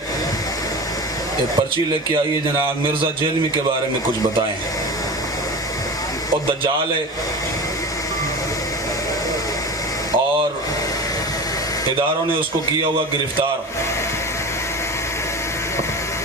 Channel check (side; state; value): both; normal; correlation 0.30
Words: ایک پرچی لے کے آئیے جناب مرزا جیلمی کے بارے میں کچھ بتائیں۔ اور دجال ہے اور اداروں نے اس کو کیا ہوا گرفتار.